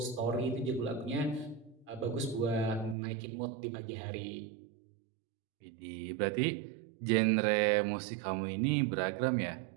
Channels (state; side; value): drops out; left; at 3.0 s